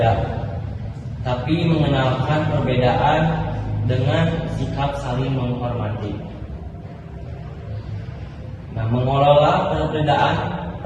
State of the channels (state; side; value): identical; both; correlation 1.00